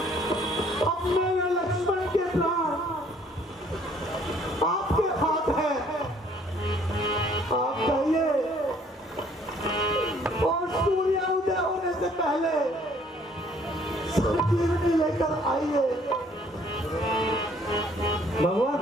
अब मेरे लक्ष्मण के प्राण आपके हाथ है। आप कहिए और सूर्य उदय होने से पहले संजीवनी लेकर आइए।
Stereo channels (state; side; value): normal; both; correlation 0.60